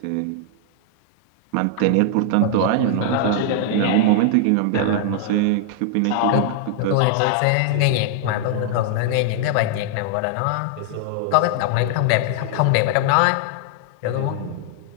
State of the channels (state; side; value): different; both; correlation 0.00